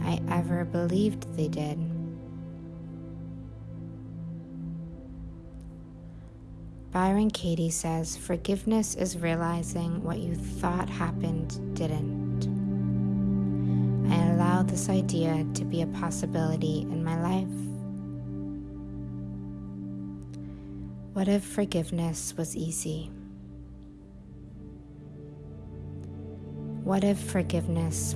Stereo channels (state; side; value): identical; both; correlation 1.00